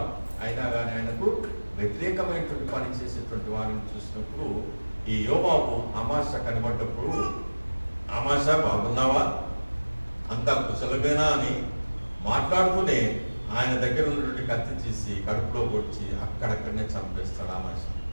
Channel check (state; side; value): inverted; both; correlation -1.00